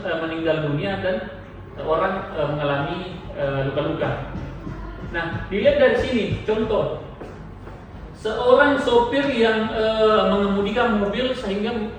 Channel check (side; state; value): both; identical; correlation 1.00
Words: dunia dan orang mengalami luka-luka. Nah, dilihat dari sini contoh seorang sopir yang mengemudikan mobil sehingga